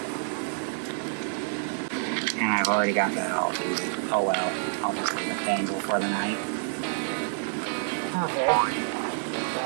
And I've already got that all booted. Oh well, I'll just leave it dangle for the night. Okay.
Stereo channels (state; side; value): silent; left; digital silence